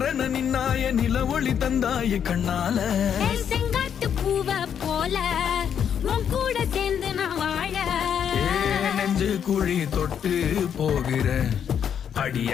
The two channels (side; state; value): right; quieter; 8.4 dB